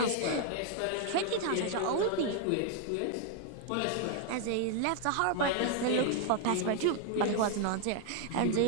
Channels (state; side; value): different; both; correlation 0.00